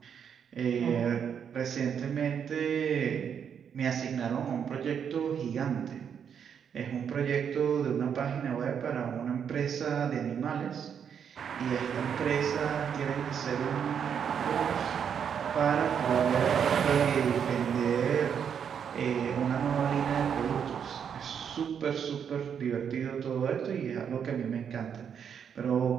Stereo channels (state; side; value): quieter; left; 7.7 dB